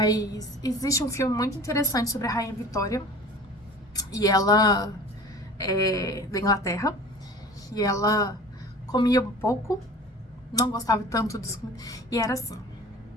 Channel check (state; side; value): normal; both; correlation 0.42